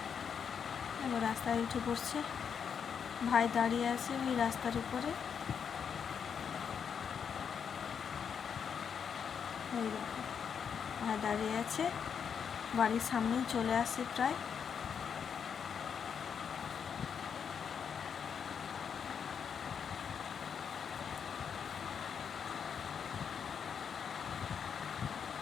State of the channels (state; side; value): quieter; right; 7.1 dB